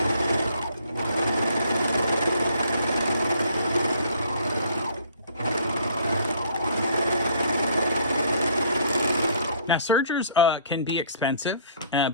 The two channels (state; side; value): inverted; both; correlation -0.58